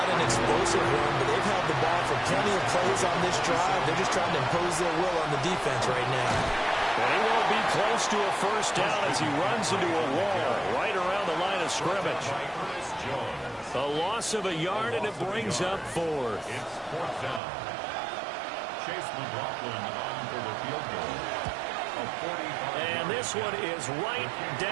an explosive run, but they've held the ball for plenty of plays on this drive. They're just trying to impose their will on the defense right now. And he won't be close to a first down as he runs into a wall right around the line of scrimmage. A loss of a yard, and it brings up 4th. It's 4th down. Chase McLaughlin on for the field goal. And this one is right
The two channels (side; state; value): left; drops out; at 17.4 s